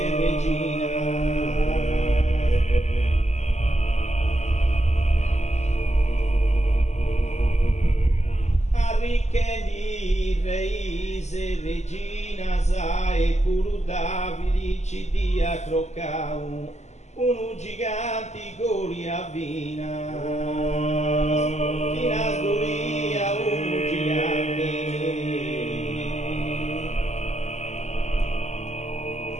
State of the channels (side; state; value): right; late; 0.33 ms